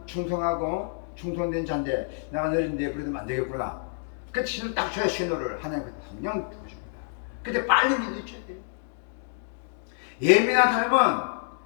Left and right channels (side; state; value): right; silent; digital silence